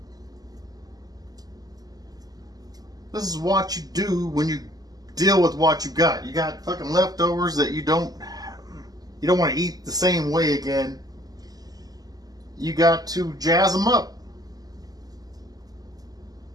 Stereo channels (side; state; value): left; late; 0.18 ms